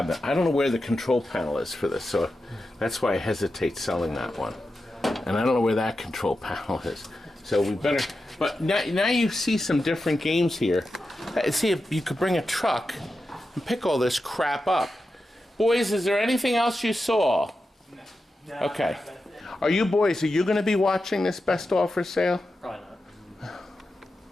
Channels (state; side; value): normal; both; correlation 0.90